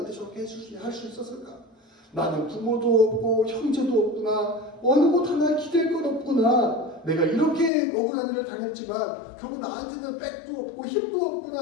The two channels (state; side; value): drops out; right; at 7.7 s